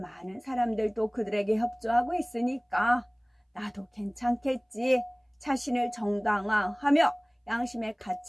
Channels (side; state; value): both; identical; correlation 1.00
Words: 많은 사람들도 그들에게 협조하고 있으니까 나도 괜찮겠지. 자신을 정당화하며 양심의